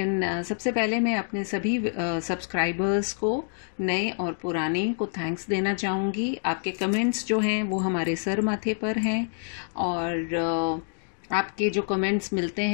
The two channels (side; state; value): right; silent; digital silence